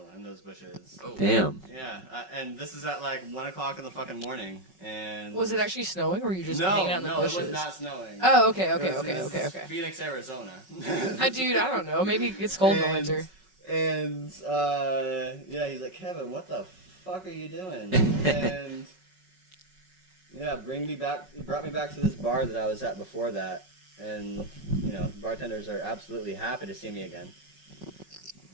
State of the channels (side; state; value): left; late; 5.4 ms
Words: in those bushes. Oh. Damn. Yeah, and this is at like 1 o'clock in the fucking morning. And Was it actually snowing, or were you just no, hanging out in the no, bushes? it was not snowing. Oh, okay, It was okay. Phoenix, Arizona. Dude, I don't know. Maybe it's cold in the And- winter. And yeah, he's like, Kevin, what the fuck are you doing? And yeah, he brought me back to this bar that I was at before that, and you know, bartenders are absolutely happy to see me again.